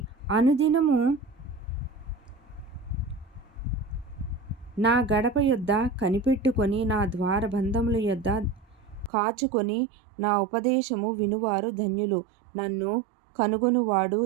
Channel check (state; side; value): drops out; left; at 9.1 s